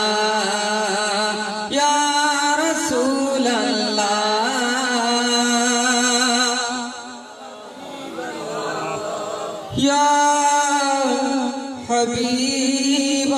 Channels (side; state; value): both; identical; correlation 1.00